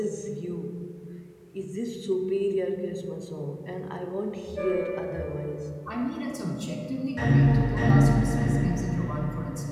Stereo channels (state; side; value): identical; both; correlation 1.00